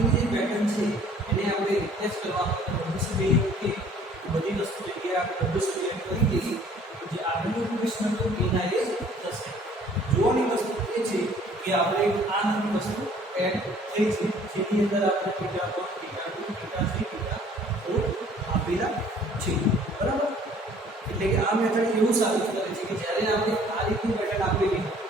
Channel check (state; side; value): normal; both; correlation 0.55